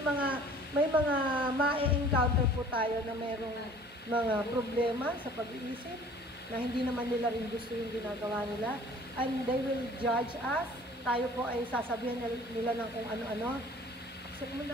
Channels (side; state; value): both; normal; correlation 0.50